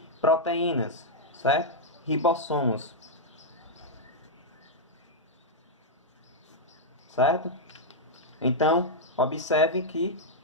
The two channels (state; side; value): normal; both; correlation -0.04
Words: proteínas, certo? Ribossomos. Certo? Então, observe